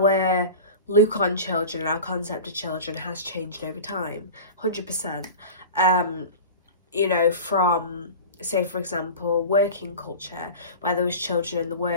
look on children, our concept of children has changed over time, 100%. You know, from, say for example, working culture, where there was children in the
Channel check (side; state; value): both; inverted; correlation -0.34